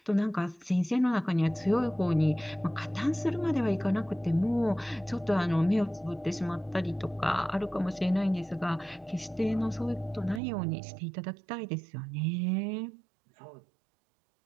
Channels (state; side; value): drops out; left; at 10.4 s